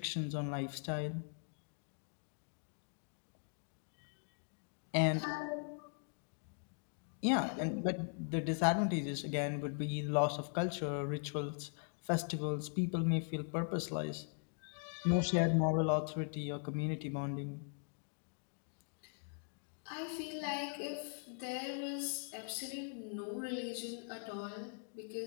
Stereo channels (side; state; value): right; silent; 51 dB below the other